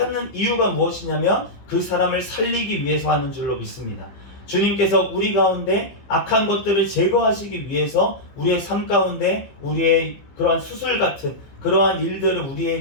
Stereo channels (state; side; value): late; right; 15 ms